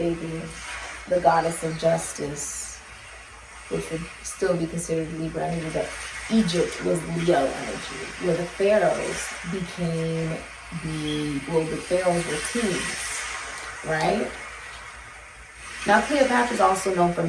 the goddess of justice, which would still be considered Libra energy, but Egypt was Leo energy, where the pharaohs became the pharaohs were kings, right? Now Cleopatra is also known for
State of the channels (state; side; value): identical; both; correlation 1.00